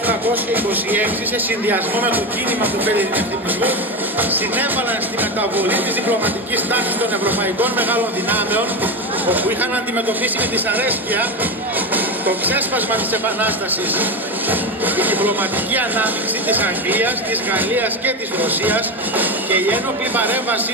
1826 σε συνδυασμό με το κίνημα του φελινευτισμού συνέβαλαν στη μεταβολή της διπλωματικής τάξης των ευρωπαϊκών μεγάλων δυνάμεων, όπου είχαν αντιμετωπίσει με δυσαρέσκεια το ξέσπασμα της Επανάστασης. Η διπλωματική ανάμειξη της Αγγλίας, της Γαλλίας και της Ρωσίας και η ένοπλη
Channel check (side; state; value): both; normal; correlation 0.18